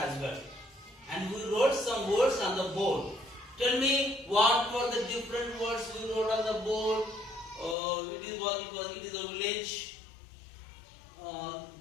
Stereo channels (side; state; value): right; drops out; at 7.8 s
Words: well. And we wrote some words on the board. Tell me what were the different words we wrote on the board. It is a village.